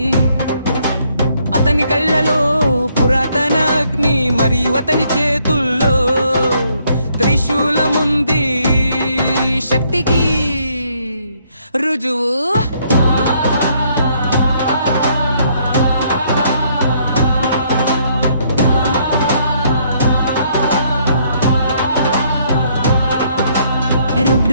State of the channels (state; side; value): inverted; both; correlation -0.69